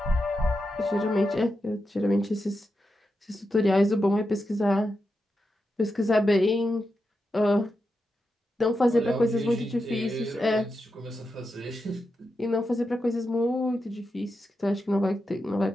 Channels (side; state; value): both; normal; correlation 0.88